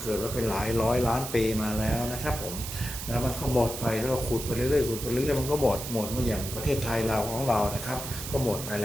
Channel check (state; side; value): noise; right; hiss, 8 dB below the sound